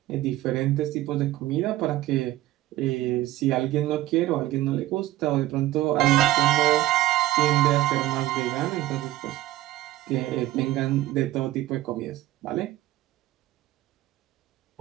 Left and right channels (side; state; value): left; quieter; 15.9 dB